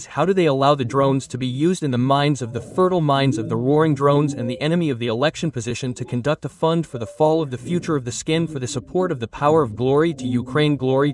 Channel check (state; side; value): identical; both; correlation 1.00